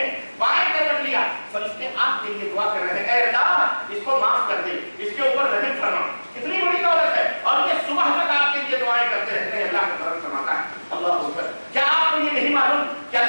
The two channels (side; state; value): both; inverted; correlation -1.00